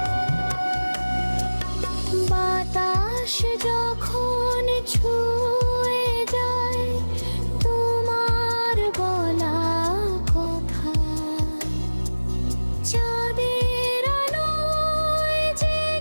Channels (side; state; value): both; inverted; correlation -1.00